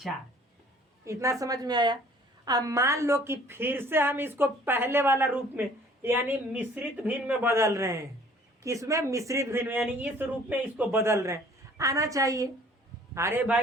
इतना समझ में आया? अब मान लो कि फिर से हम इसको पहले वाला रूप में यानी मिश्रित भिन्न में बदल रहे हैं। किसमें? मिश्रित भिन्न में, यानी इस रूप में इसको बदल रहे हैं। आना चाहिए। अरे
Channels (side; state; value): both; normal; correlation 0.54